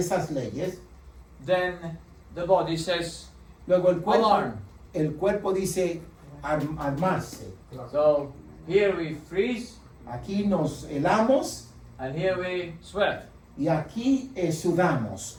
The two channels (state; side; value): identical; both; correlation 1.00